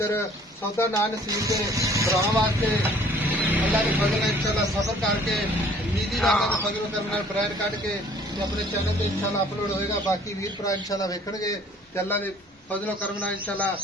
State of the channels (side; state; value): both; normal; correlation 0.55